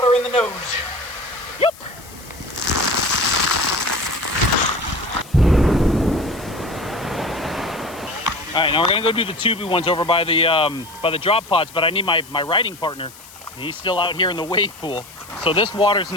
in the nose. Yep. All right, now we're gonna go do the tubey ones over by the drop pods, but I need my riding partner. He's still out here in the wave pool. So this water's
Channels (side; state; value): left; noise; hiss, 20 dB below the sound